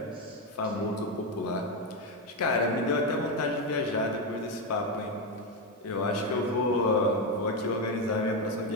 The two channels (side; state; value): both; normal; correlation 0.09